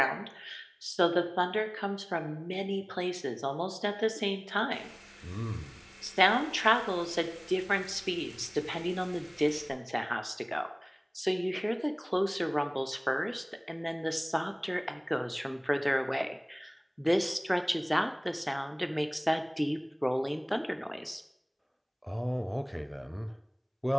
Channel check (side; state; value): both; identical; correlation 1.00